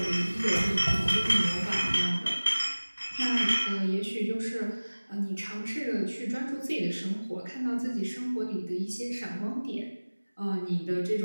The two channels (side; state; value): both; inverted; correlation -1.00